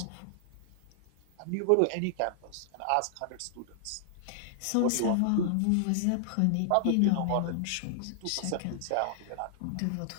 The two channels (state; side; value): different; both; correlation -0.01